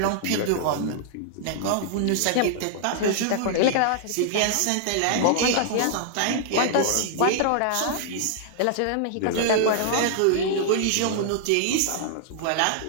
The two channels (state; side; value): different; both; correlation -0.01